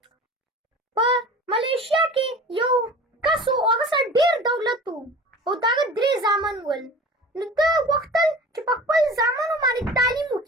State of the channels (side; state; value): both; normal; correlation 0.39